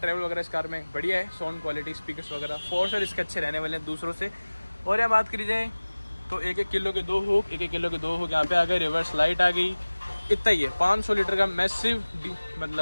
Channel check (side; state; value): both; inverted; correlation -1.00